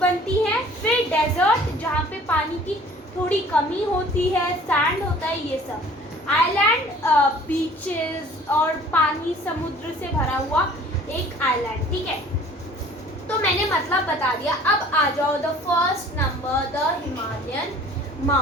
हैं, फिर डेजर्ट जहाँ पे पानी की थोड़ी कमी होती है, सैंड होता है, ये सब। आइलैंड बीचेस और पानी समुद्र से भरा हुआ एक आइलैंड, ठीक है। तो मैंने मतलब बता दिया। अब आ जाओ the first number, the Himalayan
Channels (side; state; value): both; normal; correlation 0.50